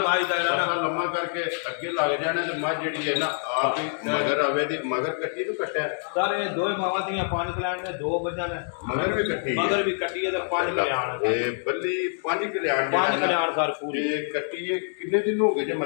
ਦਾ ਤਰਸਾ ਲੰਮਾ ਕਰਕੇ ਅੱਗੇ ਲੱਗ ਜਾਣਾ ਤੇ ਮੱਝ ਜਿਹੜੀ ਹੈ ਨਾ ਆਪ ਹੀ ਮਗਰ ਆਵੇ ਦੀ ਮਗਰ ਕੱਟੀ ਤੋਂ ਕੱਟਿਆ ਸਾਰੇ ਦੋਏ ਮਾਵਾਂ ਦੀਆਂ 5 ਕਲਿਆਣ ਨੇ 2 ਮੱਝਾਂ ਨੇ ਮਗਰ ਵੀ ਕੱਟੀ ਮਗਰ ਵੀ ਕੱਟੀ ਹੈ ਤੇ 5 ਕਲਿਆਣ ਇਹ ਬੱਲੀ 5 ਕਲਿਆਣ 5 ਕਲਿਆਣ ਸਰ ਪੂਰੀ ਇਹ ਕੱਟੀ ਇਹ ਕਿੰਨੇ ਦਿਨ ਹੋ ਗਏ ਜੇ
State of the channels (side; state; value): right; silent; digital silence